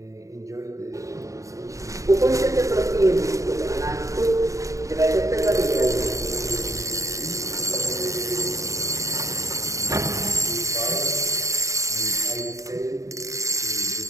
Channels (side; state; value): left; late; 0.16 ms